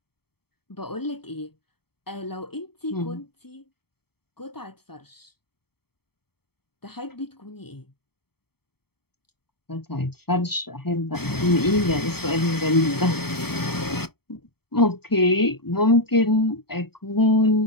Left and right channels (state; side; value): late; right; 0.96 ms